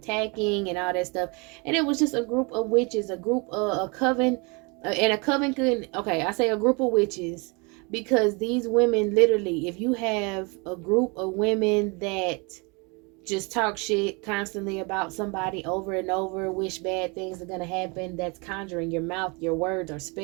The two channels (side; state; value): left; quieter; 30.2 dB